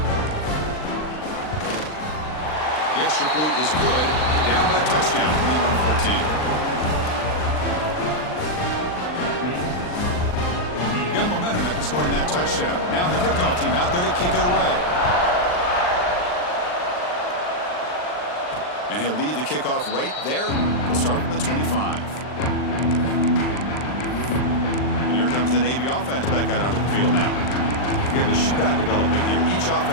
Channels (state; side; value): late; right; 39 ms